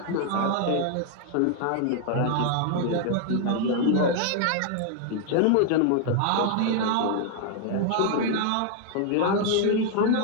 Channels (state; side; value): different; both; correlation 0.00